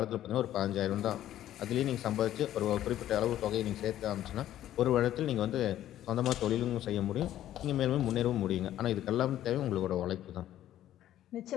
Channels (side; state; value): right; quieter; 12.5 dB